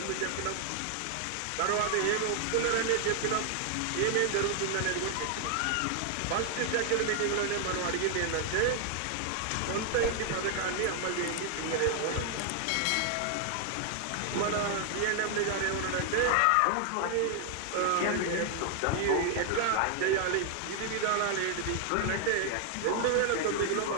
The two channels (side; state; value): both; different; correlation 0.00